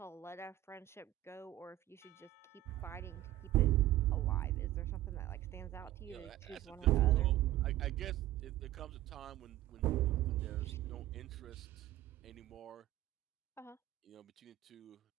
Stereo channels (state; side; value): quieter; left; 14.7 dB